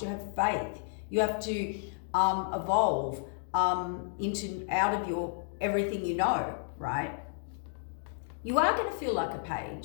You have faith. You have to evolve out of your everything you know, right? You are going to feel like a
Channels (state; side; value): silent; right; digital silence